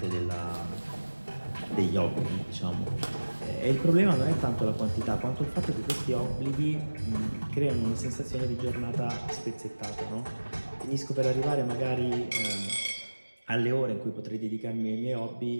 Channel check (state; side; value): inverted; both; correlation -1.00